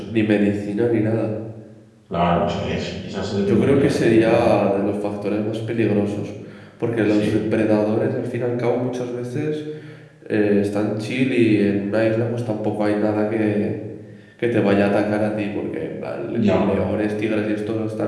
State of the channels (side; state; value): both; identical; correlation 1.00